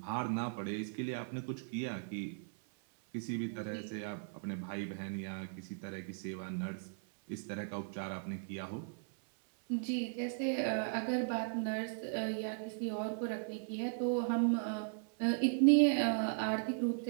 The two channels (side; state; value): left; silent; 53 dB below the other